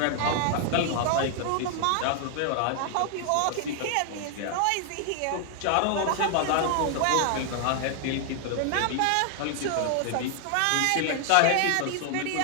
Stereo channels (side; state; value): both; different; correlation 0.00